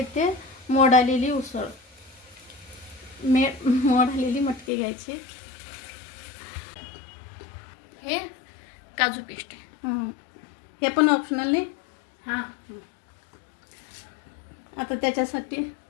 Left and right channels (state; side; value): drops out; right; at 4.7 s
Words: मोड आलेली उसळ, मोड आलेली मटकी घ्यायची, हे काजू पेस्ट, हे पण ऑप्शनल नाही। हां, आता त्याच्यासाठी